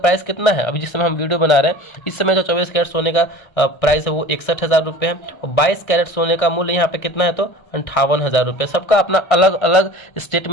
कितना है, अभी जिस समय हम वीडियो बना रहे हैं इस समय जो 24 कैरेट सोने का प्राइस है वो 61,000 रुपये है। और 22 कैरेट सोने का मूल्य यहाँ पे कितना है, तो 58,000 रुपये। सबका अपना अलग अलग स्टेट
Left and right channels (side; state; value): right; late; 1.3 ms